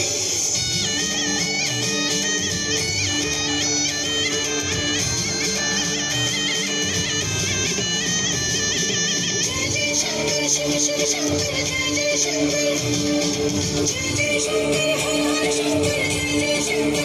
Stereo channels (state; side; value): identical; both; correlation 1.00